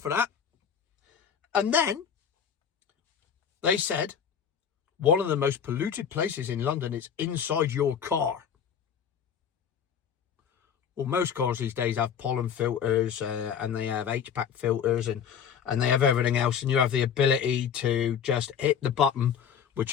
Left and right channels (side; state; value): right; quieter; 7.9 dB